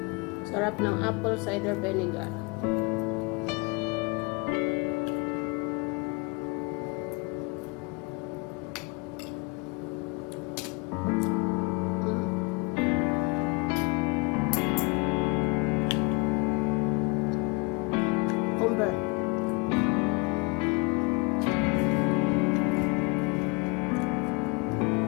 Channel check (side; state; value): right; quieter; 28.7 dB